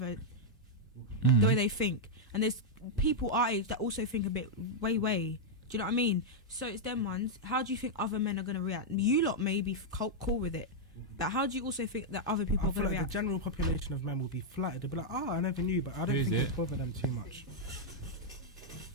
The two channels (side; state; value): both; normal; correlation -0.04